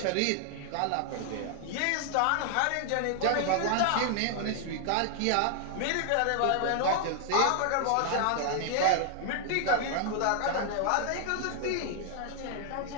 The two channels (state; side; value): different; both; correlation 0.00